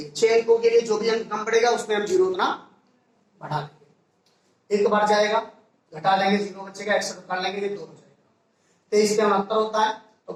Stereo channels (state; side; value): identical; both; correlation 1.00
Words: 6 अंकों के लिए जो भी अंक कम पड़ेगा उसमें हम जीरो उतना बढ़ा लेंगे, एक बार जाएगा घटा लेंगे, जीरो बचेगा, 61 काट लेंगे, ये 2 हो जाएगा। 23 पे 69 होता है, तो